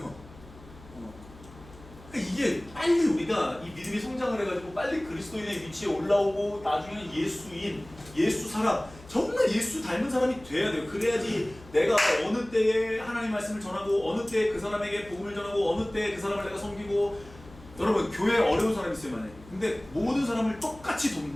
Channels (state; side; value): noise; left; hum, 20 dB below the sound